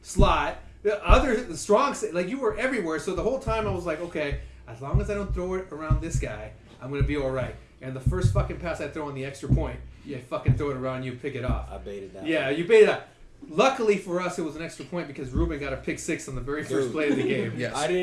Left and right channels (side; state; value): both; identical; correlation 1.00